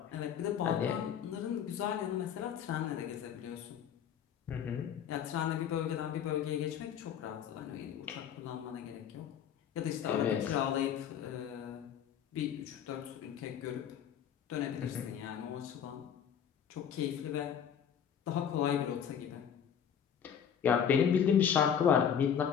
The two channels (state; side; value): quieter; right; 8.4 dB